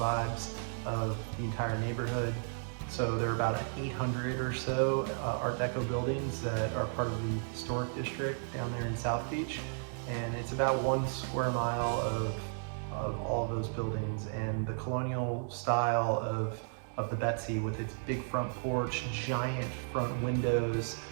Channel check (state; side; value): silent; left; 55 dB below the other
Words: of the entire neighborhood. So there are about 800 or so Art Deco buildings that are part of the historic district down there in South Beach. And it's about 1 square mile of all of those buildings, and the colonial style of the Betsy with its big front porch, giant front windows,